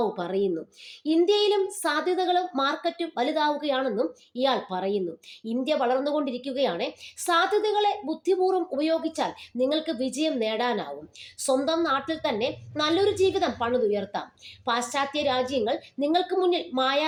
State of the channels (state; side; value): identical; both; correlation 1.00